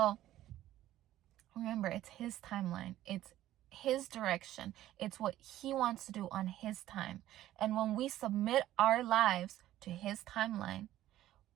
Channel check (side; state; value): left; quieter; 13.8 dB